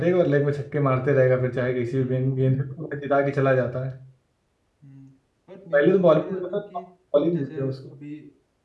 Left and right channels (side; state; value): both; identical; correlation 1.00